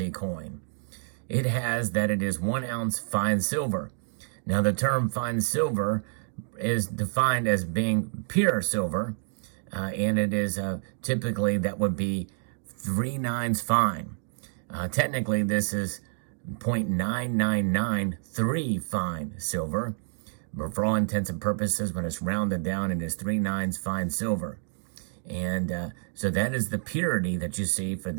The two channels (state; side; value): silent; left; digital silence